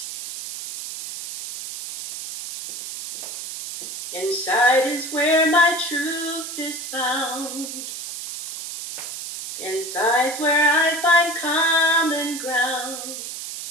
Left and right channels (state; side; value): noise; right; hiss, 8 dB below the sound